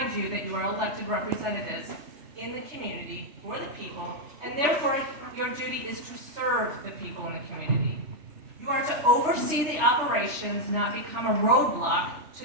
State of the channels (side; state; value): left; late; 3.4 ms